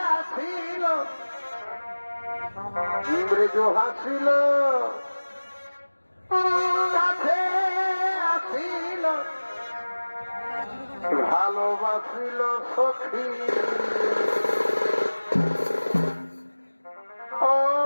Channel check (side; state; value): both; inverted; correlation -1.00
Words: আসিল ব্রেজো হাসিল কাছে আসিল ভালোবাসিল সখী